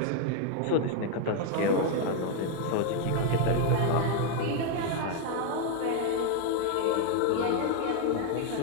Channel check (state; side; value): different; both; correlation 0.00